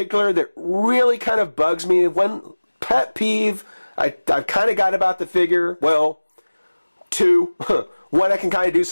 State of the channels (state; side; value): inverted; both; correlation -1.00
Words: that really kind of bugs me, one pet peeve I've kind of got about the figure, well, two. One I can kind of do